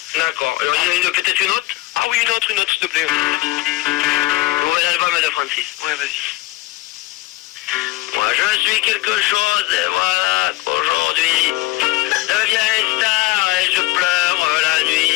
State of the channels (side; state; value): right; quieter; 18.8 dB